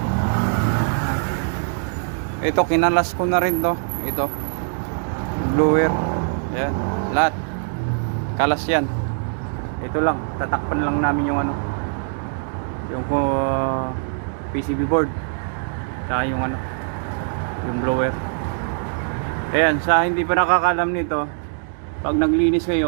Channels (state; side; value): silent; left; digital silence